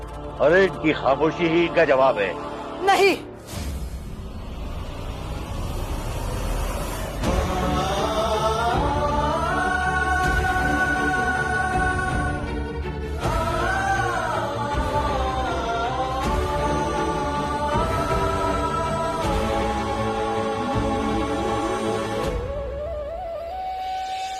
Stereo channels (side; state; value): both; identical; correlation 1.00